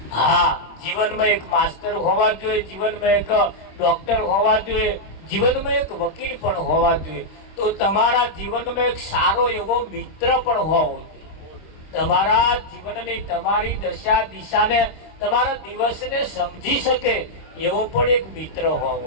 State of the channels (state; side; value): late; right; 26 ms